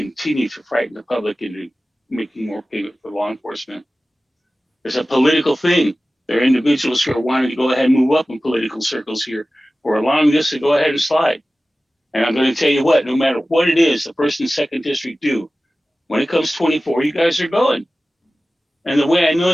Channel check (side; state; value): both; normal; correlation 0.96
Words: to frighten the public into making more payment for law enforcement? There's a political thing. There are individuals who are wanting to go ahead and move up in political circles here, who are allowing this to go ahead and slide. And I'm going to tell you what, no matter what it is, the first and second district do, when it comes 24, you guys are going. And the way I know